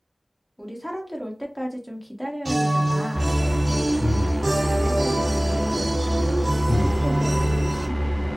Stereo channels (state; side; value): normal; both; correlation 0.98